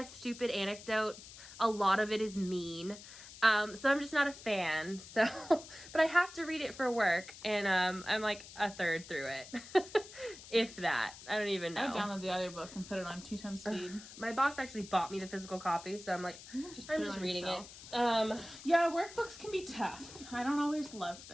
stupid anecdotes. A lot of it is mean. So I'm just not a fan. So, but I have to read it for work, and I'm like a third through it, if that. I don't even know. I downloaded the audiobook and put it on 2x speed. My boss actually bought me the physical copy, so I'm like, I'm just reading it. Yeah, workbooks can be tough. I don't always love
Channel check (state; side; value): noise; left; hiss, 16 dB below the sound